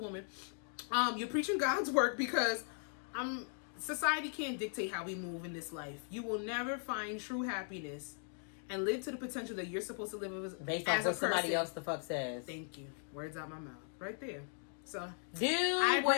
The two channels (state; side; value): silent; right; 52 dB below the other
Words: You're preaching God's work because society can't dictate how we move in this life. You will never find true happiness and live to the potential that you're supposed to live based as on a what somebody person. else the fuck says. Thank you. Words out my mouth. Right there. So do